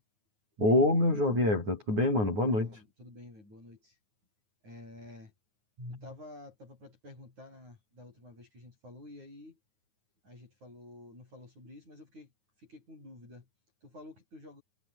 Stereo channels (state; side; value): late; left; 9.5 ms